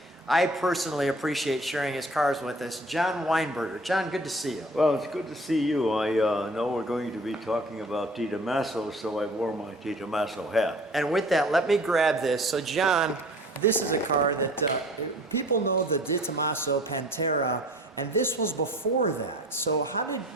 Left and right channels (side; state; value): both; normal; correlation 0.47